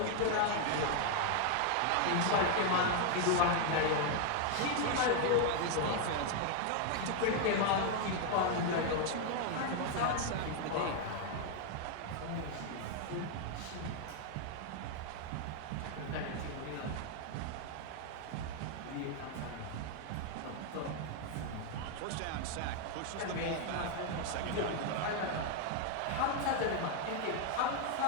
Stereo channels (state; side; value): different; both; correlation 0.01